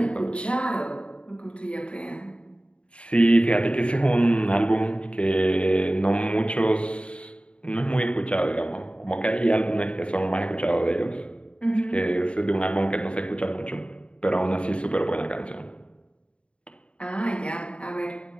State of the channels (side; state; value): right; late; 0.058 ms